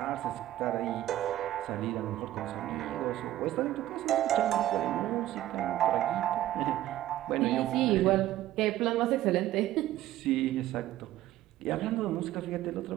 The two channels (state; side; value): quieter; left; 14.1 dB